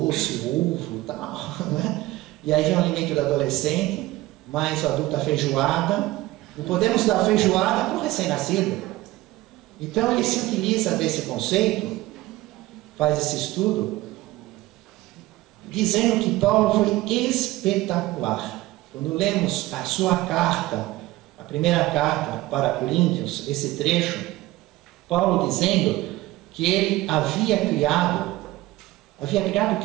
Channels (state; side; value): quieter; left; 17.8 dB